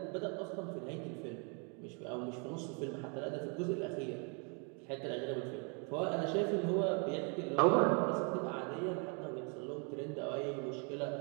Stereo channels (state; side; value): quieter; left; 36.6 dB